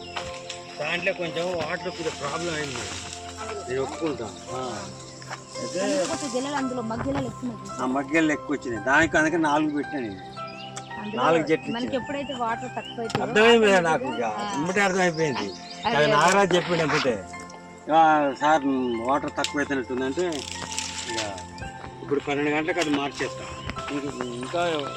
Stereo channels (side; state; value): both; identical; correlation 1.00